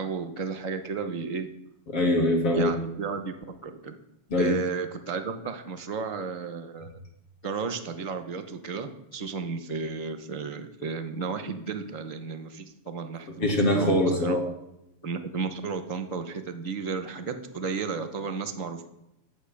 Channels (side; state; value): right; late; 7.3 ms